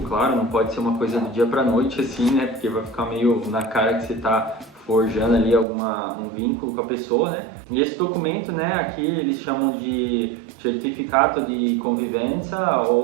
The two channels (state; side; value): drops out; left; at 5.7 s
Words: claro, não pode ser uma coisa do dia para noite assim, né? Porque vai ficar meio na cara que você tá forjando ali um vínculo com a pessoa, né? E esse documento, né, aqui eles chamam de certificato de convivência